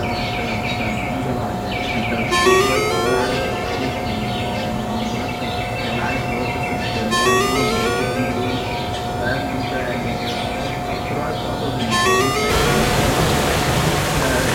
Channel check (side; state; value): both; identical; correlation 1.00